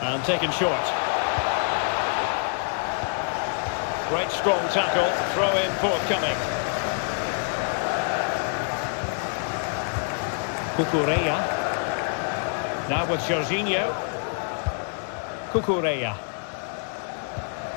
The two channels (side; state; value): right; silent; 61 dB below the other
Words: And taken short. Great strong tackle, throw in forthcoming. Cucurella. Now with Jorginho. Cucurella.